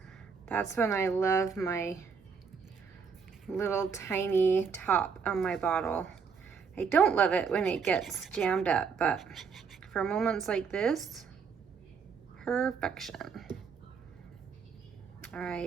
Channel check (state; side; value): quieter; left; 5.9 dB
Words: That's when I love my little tiny top on my bottle. I don't love it when it gets jammed up, but for moments like this, perfection. All